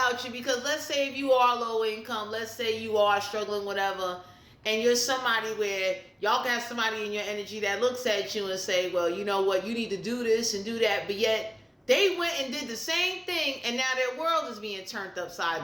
you, because let's say if you are low income, let's say you are struggling, whatever, and you're somebody where y'all can have somebody in your energy that looks at you and say, well, you know what, you need to do this and do that, but yet they went and did the same thing and now their world is being turned upside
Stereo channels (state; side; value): identical; both; correlation 1.00